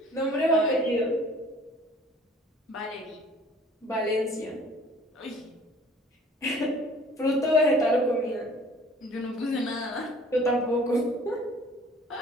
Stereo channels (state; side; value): normal; both; correlation 0.51